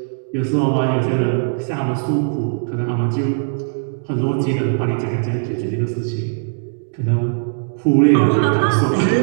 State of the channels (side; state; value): left; silent; digital silence